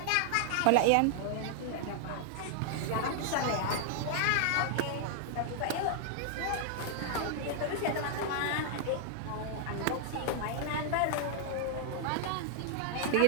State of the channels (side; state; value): both; different; correlation -0.01